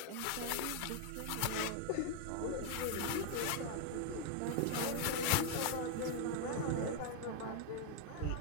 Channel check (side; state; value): both; different; correlation 0.00